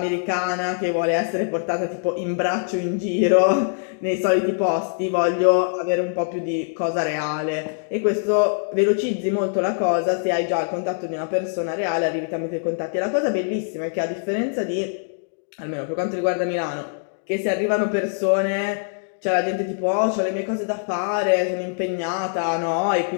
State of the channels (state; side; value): silent; right; digital silence